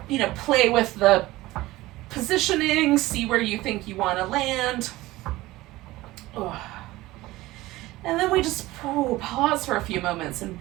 play with the positioning, see where you think you want to land. Oh. And then we just pause for a few moments and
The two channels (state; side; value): quieter; left; 18.3 dB